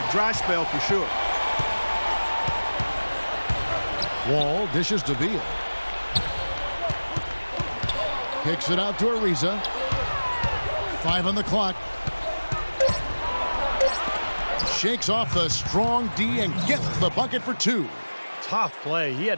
Dry spell for sure. Wall dishes to Beal. Kicks it out to Ariza. 5 on the clock. Shakes off the strong D and gets the bucket for 2. Tough play. He had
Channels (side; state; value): both; inverted; correlation -1.00